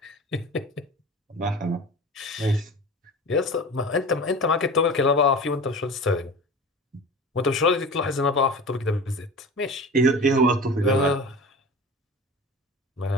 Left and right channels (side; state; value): both; normal; correlation 0.36